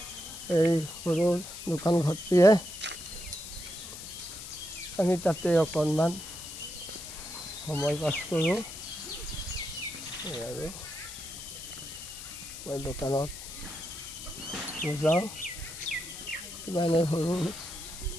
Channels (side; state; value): left; noise; hiss, 11 dB below the sound